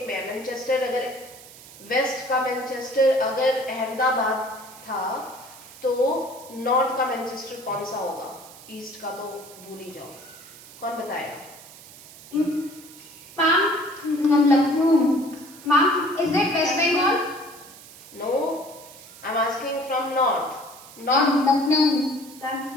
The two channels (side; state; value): right; noise; hiss, 19 dB below the sound